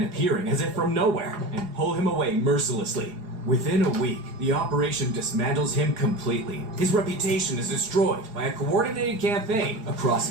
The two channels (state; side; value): late; left; 4.8 ms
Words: appearing as if from nowhere and pull him away mercilessly. Within a week, the operation dismantles him completely. His reputation is destroyed by a coordinated campaign